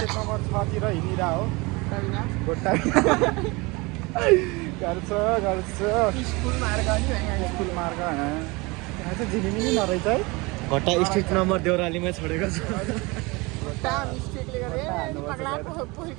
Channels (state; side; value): quieter; left; 25.1 dB